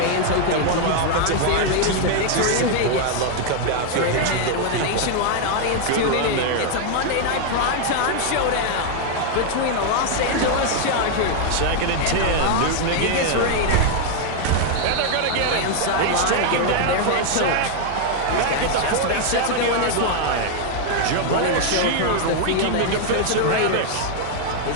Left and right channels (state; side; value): different; both; correlation 0.00